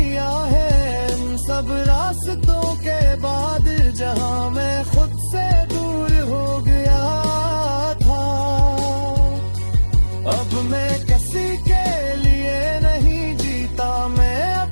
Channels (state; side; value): inverted; both; correlation -1.00